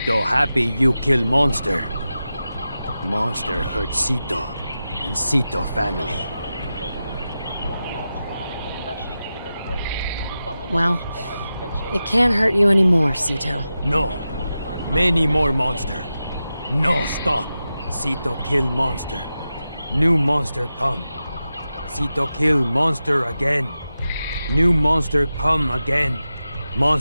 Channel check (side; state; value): both; inverted; correlation -0.92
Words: happy you kill monster. Monster hurt Sito and Sito family. Well, it can't hurt you anymore, Sito. No. Many more monster. No stop. Sito kill monster. New monster come. Sito kill monster again. New monster come again.